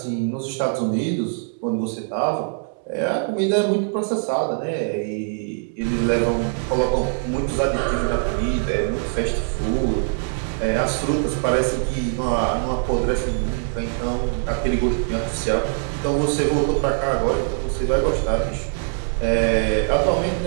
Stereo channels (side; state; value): left; silent; 61 dB below the other